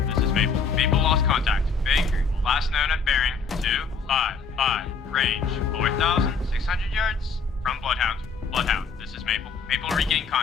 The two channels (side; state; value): right; quieter; 5.0 dB